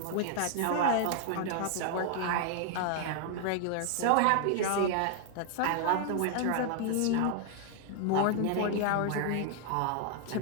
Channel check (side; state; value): both; different; correlation 0.00